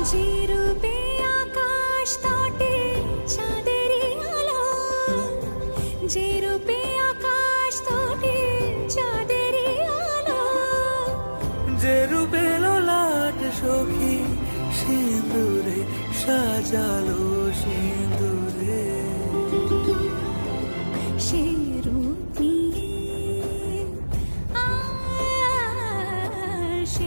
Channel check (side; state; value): both; inverted; correlation -1.00